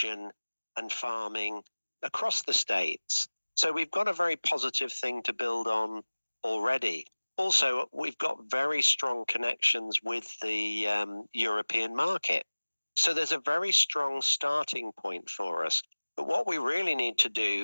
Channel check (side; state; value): both; inverted; correlation -1.00